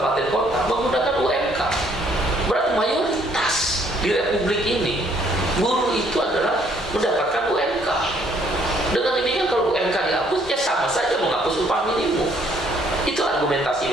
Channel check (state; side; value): normal; both; correlation 0.65